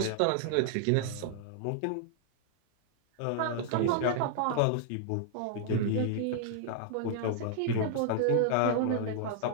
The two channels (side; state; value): both; different; correlation -0.01